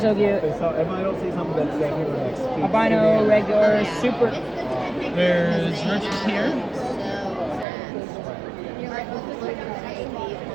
cute. So if I don't see something that's staying here next, Albino, regular, super. There's roaches here.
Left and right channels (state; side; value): drops out; left; at 7.7 s